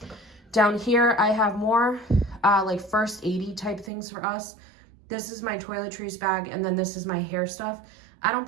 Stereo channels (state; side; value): drops out; left; at 3.9 s